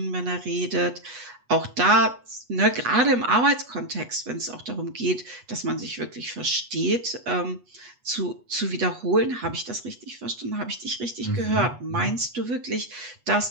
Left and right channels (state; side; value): late; left; 8.2 ms